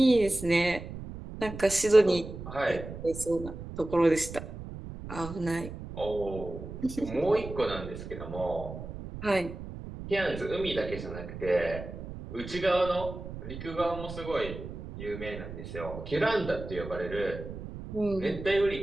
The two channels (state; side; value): noise; right; rumble, 10 dB below the sound